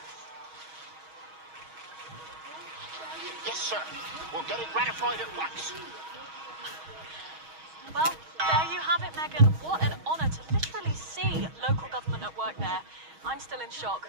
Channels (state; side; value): late; left; 6.3 ms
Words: Yes, sir. We'll get it ratified at once. Well, there you have it, Megan. What an honour to literally see local government at work there. I'm still in shock.